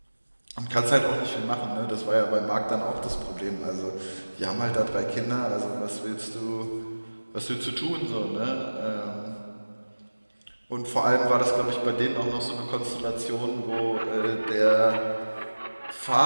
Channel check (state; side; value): inverted; both; correlation -1.00